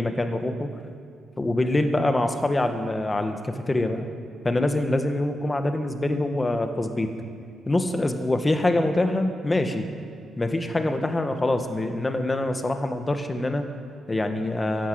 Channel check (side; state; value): both; normal; correlation 0.92